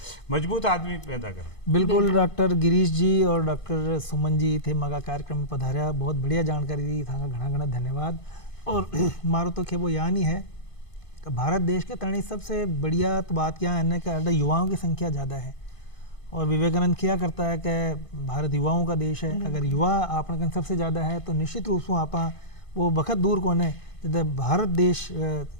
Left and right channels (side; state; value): right; late; 1.5 ms